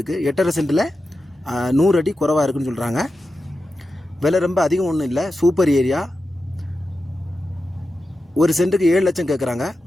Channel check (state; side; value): normal; both; correlation 0.91